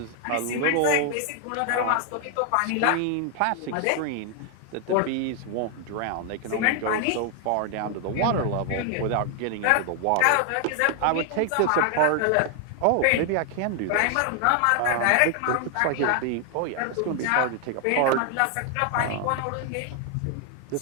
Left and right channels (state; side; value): different; both; correlation 0.00